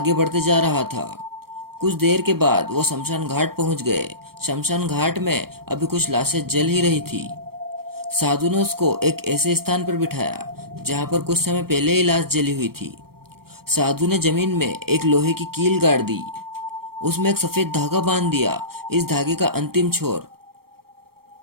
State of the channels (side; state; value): left; late; 0.94 ms